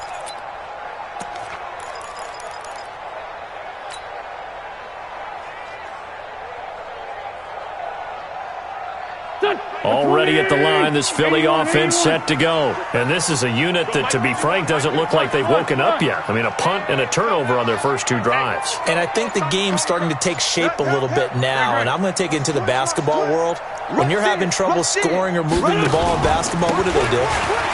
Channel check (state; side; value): identical; both; correlation 1.00